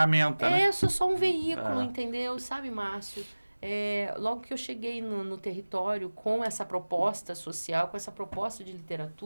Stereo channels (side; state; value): both; inverted; correlation -1.00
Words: né? Eu sou só um veículo, entendeu? Sabe, Márcio? Logo que eu cheguei no território com essa proposta social, com essa proposta de